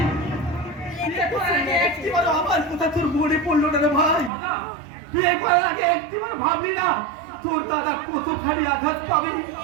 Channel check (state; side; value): drops out; left; at 4.3 s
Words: বিয়ে করার আগে একটিবার আমার কথা তোর মনে পড়লো না রে ভাই? বিয়ে করার আগে একটিবার ভাবলি না তোর দাদা কতখানি আঘাত পাবে,